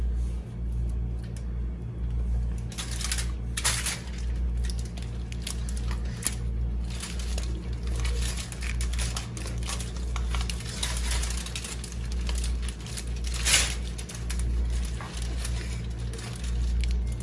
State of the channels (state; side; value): identical; both; correlation 1.00